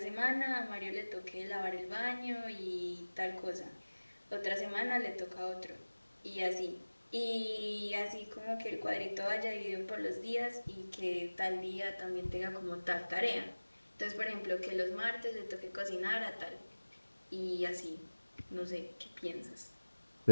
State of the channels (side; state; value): both; inverted; correlation -1.00